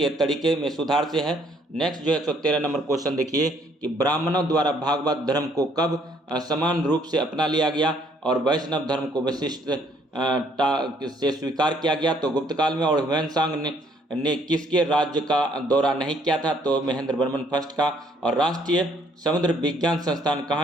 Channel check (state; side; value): normal; both; correlation 0.65